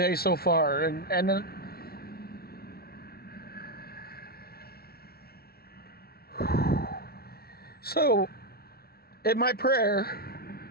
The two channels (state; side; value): late; right; 0.44 ms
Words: so far. And then, so in my